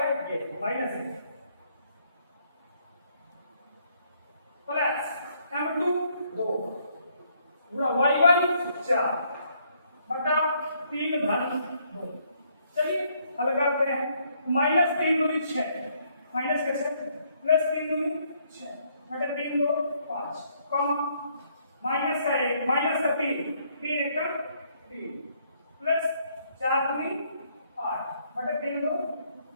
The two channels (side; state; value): both; inverted; correlation -0.70